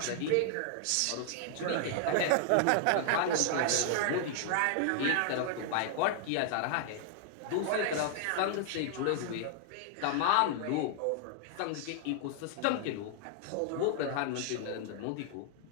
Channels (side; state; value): both; different; correlation 0.00